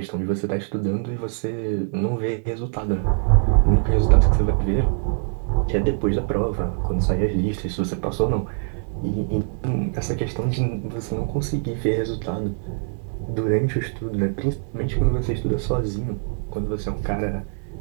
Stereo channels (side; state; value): left; silent; 63 dB below the other